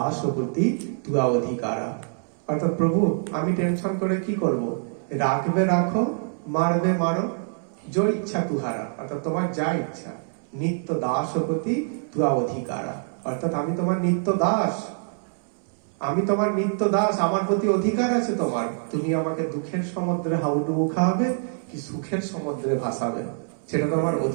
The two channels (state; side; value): silent; left; 62 dB below the other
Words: প্রতি তুয়া অধিকারা। অর্থাৎ প্রভু, আমি টেনশন করে কি করব, রাখবে রাখো, মারবে মারো, জয় ইচ্ছা তুহারা, অর্থাৎ তোমার যা ইচ্ছা, নিত্য দাস প্রতি তুয়া অধিকারা, অর্থাৎ আমি তোমার নিত্য দাস, আমার প্রতি অধিকার আছে তোমার। তুমি আমাকে দুঃখের সমুদ্রে হাউডুবু খাওয়াবে কি সুখের সমুদ্রে ভাসাবে, সেটা তোমার